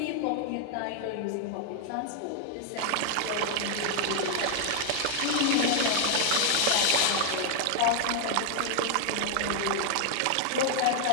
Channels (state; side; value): different; both; correlation 0.00